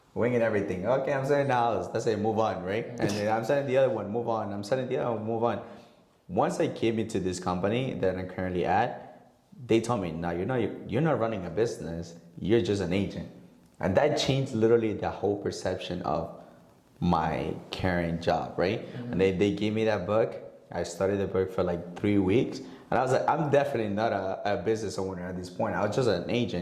winging everything. Okay, I'm selling the house. That's it, move on, right? And then I'm selling the other one, move on. I'm selling the other one, move on. Once I came into this company that I'm currently at, they told me, no, you're not running a business. You're just an agent. And that changed literally the whole perception of my current job, right? And they gave me that book. I studied the book for like 3 weeks. And I was like, I'm definitely not a business owner at this point. I was just an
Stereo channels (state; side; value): identical; both; correlation 1.00